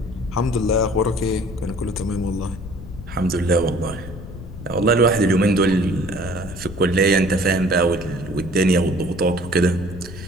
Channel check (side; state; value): left; noise; rumble, 12 dB below the sound